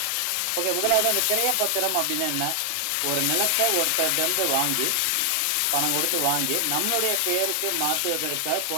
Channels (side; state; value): both; different; correlation 0.00